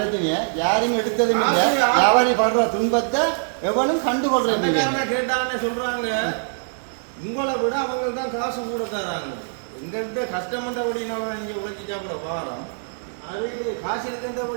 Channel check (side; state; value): left; silent; 55 dB below the other